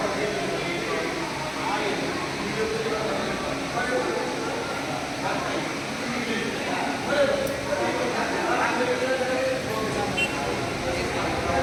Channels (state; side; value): identical; both; correlation 1.00